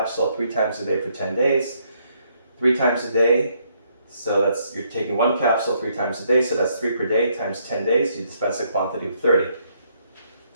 3 times a day for 10 days. 3 times a day, so you're taking 1 capsule 3 times a day, so that's 3 per day times 10 days, you dispense a quantity of 30.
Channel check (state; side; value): inverted; both; correlation -0.72